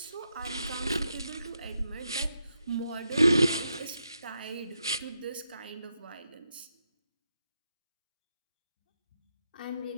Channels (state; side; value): inverted; both; correlation -0.83